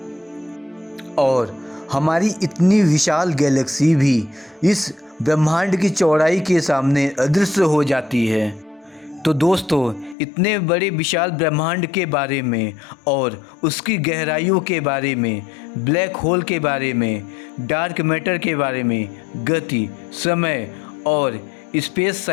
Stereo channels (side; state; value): right; drops out; at 10.2 s